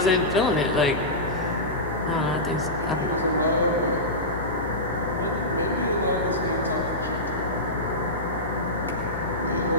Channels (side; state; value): left; noise; hum, 10 dB below the sound